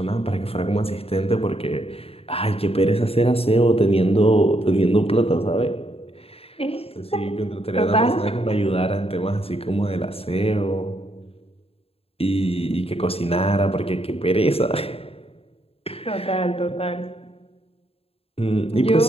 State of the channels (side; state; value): right; late; 0.28 ms